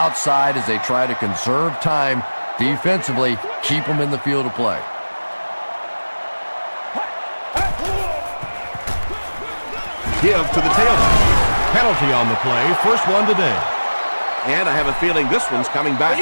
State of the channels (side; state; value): both; inverted; correlation -1.00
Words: as they try to conserve time defensively, keep them in the field of play. Give to the tailback. Penalty on the play. First one today. And I have a feeling this one's coming back.